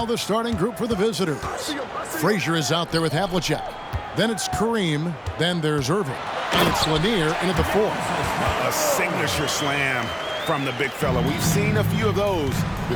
the starting group for the visitors. Frazier is out there with Havlicek. Then it's Kareem. Then there's Irving. And it's Lanier in at the 4. A signature slam from the big fella. We've seen a few of those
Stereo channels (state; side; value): identical; both; correlation 1.00